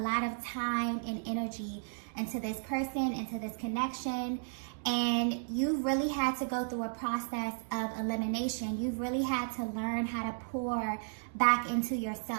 of time and energy into this person, into this connection, and you really had to go through a process of elimination. You've really had to learn how to pour back into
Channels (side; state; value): left; silent; digital silence